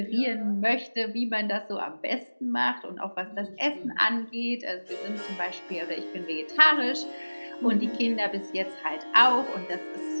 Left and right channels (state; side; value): inverted; both; correlation -1.00